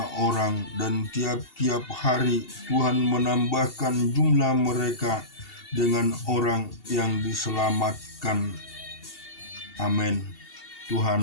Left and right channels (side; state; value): right; late; 2.7 ms